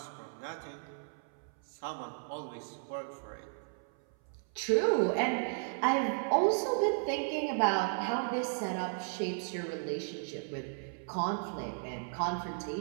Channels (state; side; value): silent; left; 55 dB below the other